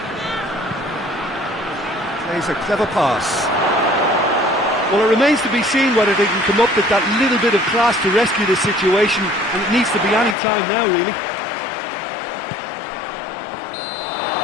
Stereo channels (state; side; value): drops out; right; at 10.4 s